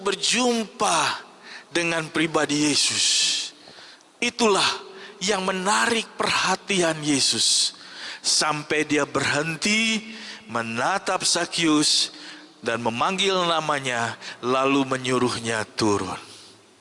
berjumpa dengan pribadi Yesus, itulah yang menarik perhatian Yesus. Sampai dia berhenti menatap Sakyus dan memanggil namanya, lalu menyuruhnya turun.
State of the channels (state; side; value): identical; both; correlation 1.00